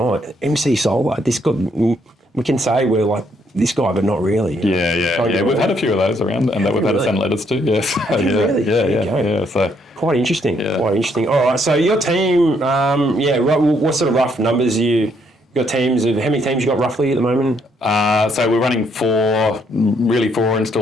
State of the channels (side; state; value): both; normal; correlation 0.71